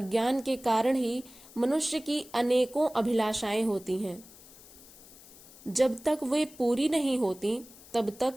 के कारण ही मनुष्य की अनेकों अभिलाषाएं होती हैं। जब तक वे पूरी नहीं होती, तब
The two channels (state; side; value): noise; left; hiss, 21 dB below the sound